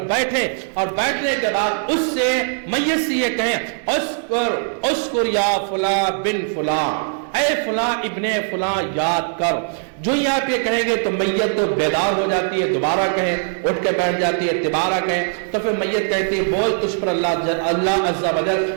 بیٹھیں, اور بیٹھنے کے بعد اس سے میت سے یہ کہیں اسکر یا فلاں بن فلاں, اے فلاں ابن فلاں یاد کر. جو ہی آپ یہ کہیں گے تو میت تو بیدار ہو جاتی ہے, دوبارہ کہیں, اٹھ کے بیٹھ جاتی ہے, دوبارہ کہیں. تو پھر میت کہتی ہے بول تجھ پر اللہ عز و جل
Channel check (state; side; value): silent; left; 63 dB below the other